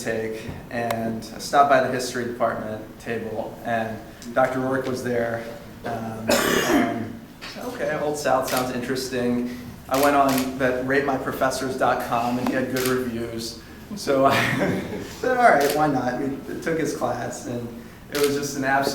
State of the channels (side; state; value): both; identical; correlation 1.00